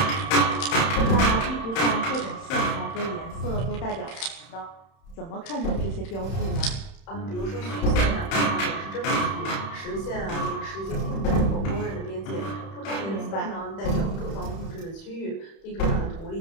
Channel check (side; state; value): right; late; 31 ms